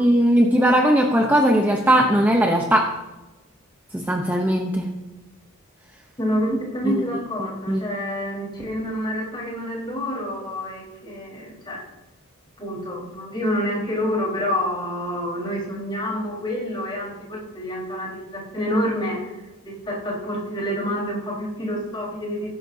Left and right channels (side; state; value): both; normal; correlation 0.65